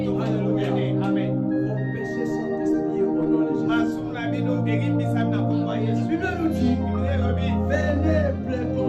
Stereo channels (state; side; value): identical; both; correlation 1.00